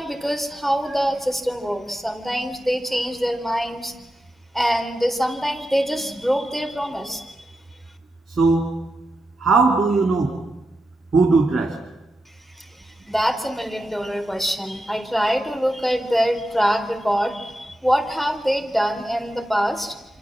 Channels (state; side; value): normal; both; correlation 0.88